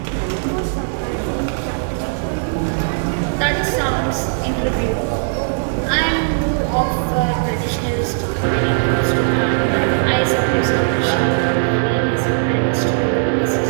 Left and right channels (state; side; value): silent; left; 65 dB below the other